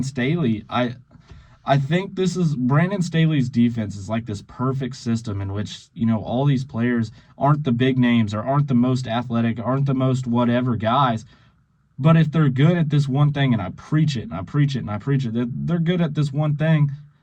Staley. I think this is Brandon Staley's defense is like this perfect system in which, all these players aren't the big names or aren't the most athletic, aren't the most whatever guys. But if they're good at this one thing, and I preach it, and I preach it, and I preach it, they're good at this one thing,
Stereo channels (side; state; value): both; identical; correlation 1.00